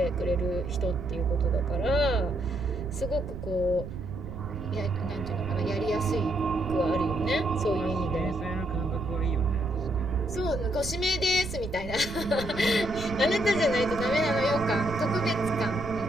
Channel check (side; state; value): right; noise; rumble, 10 dB below the sound